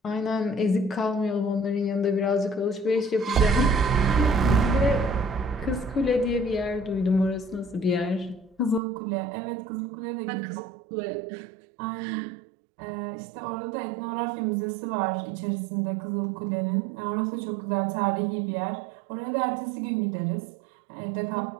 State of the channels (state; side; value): drops out; left; at 8.8 s